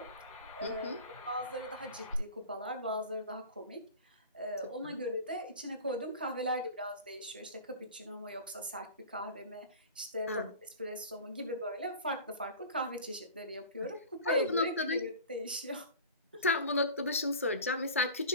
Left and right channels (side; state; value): both; inverted; correlation -0.37